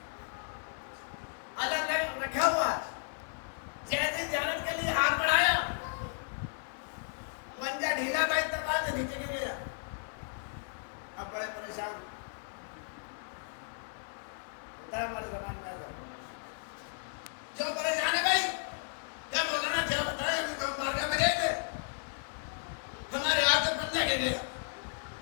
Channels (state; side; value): silent; right; 55 dB below the other